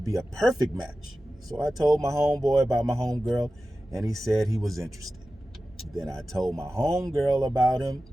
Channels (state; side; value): normal; both; correlation 0.94